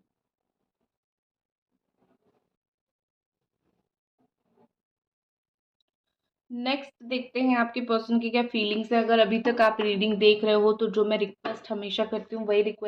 नेक्स्ट देखते हैं आपके पर्सन की क्या फीलिंग्स है। अगर अभी तक आप रीडिंग देख रहे हो, तो जो मैं रिक्वेस्ट हमेशा करती हूँ वही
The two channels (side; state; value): both; identical; correlation 1.00